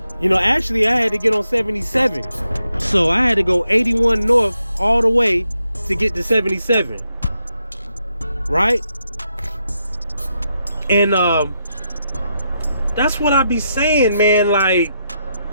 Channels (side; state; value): both; inverted; correlation -0.82